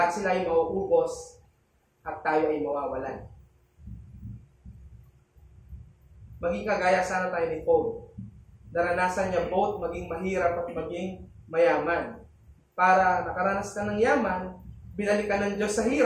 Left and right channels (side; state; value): both; identical; correlation 1.00